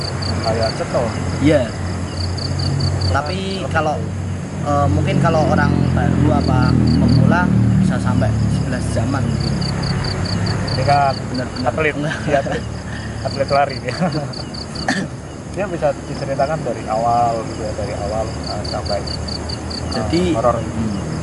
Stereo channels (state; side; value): identical; both; correlation 1.00